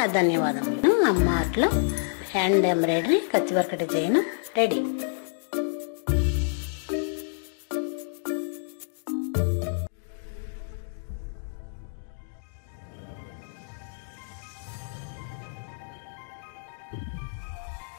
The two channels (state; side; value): silent; right; digital silence